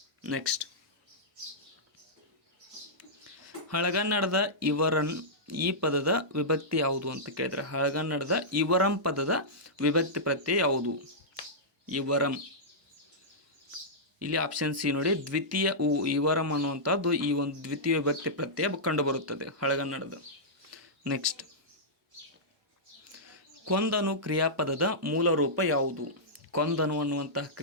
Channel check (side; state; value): both; normal; correlation -0.13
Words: ನೆಕ್ಸ್ಟ್, ಹಳಗನ್ನಡದ ಇವರನ್ ಈ ಪದದ ವಿಭಕ್ತಿ ಯಾವುದು ಅಂತ ಕೇಳಿದ್ರೆ, ಹಳಗನ್ನಡದ ಇವರಂ ಪದದ ವಿಭಕ್ತಿ ಪ್ರತ್ಯಯ ಯಾವುದು? ಇವರಂ. ಇಲ್ಲಿ ಆಪ್ಷನ್ ಸಿ ನೋಡಿ, ದ್ವಿತೀಯ ಇವರಂ ಅನ್ನುವಂಥದ್ದು ಈ ಒಂದು ದ್ವಿತೀಯ ವಿಭಕ್ತಿ ಪ್ರತ್ಯಯ ಕಂಡುಬರುತ್ತದೆ ಹಳಗನ್ನಡದ. ನೆಕ್ಸ್ಟ್, ಕೊಂದನು ಕ್ರಿಯಾಪದದ ಮೂಲ ರೂಪ ಯಾವುದು? ಕೊಂದನು ಅನ್ನುವಂತಹ